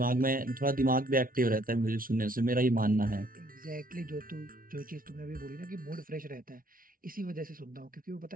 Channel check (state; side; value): late; left; 0.41 ms